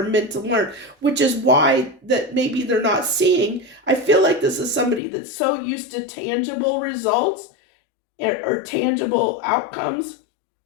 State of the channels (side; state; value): right; drops out; at 5.0 s